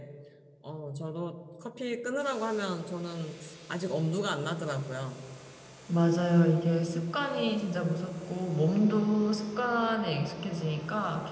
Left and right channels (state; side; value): identical; both; correlation 1.00